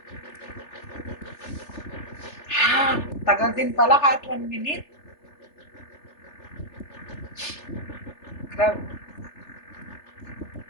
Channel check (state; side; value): late; right; 3.4 ms